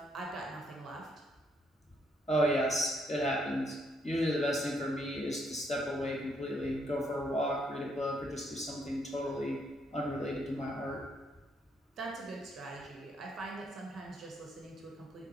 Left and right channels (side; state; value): both; normal; correlation 0.73